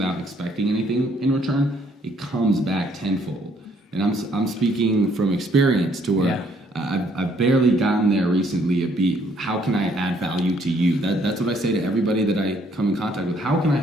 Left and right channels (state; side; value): normal; both; correlation 0.66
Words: expecting anything in return, it comes back tenfold. And I'm speaking from experience to where I've barely gotten there recently. How can I add value to you? That's what I say to everybody that I come in contact with. How can I